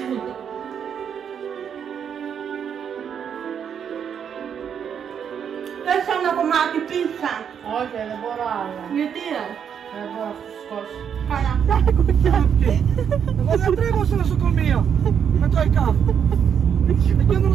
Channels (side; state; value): left; quieter; 7.9 dB